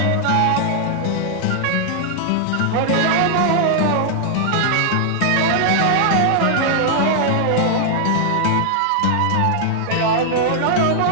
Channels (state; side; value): different; both; correlation 0.00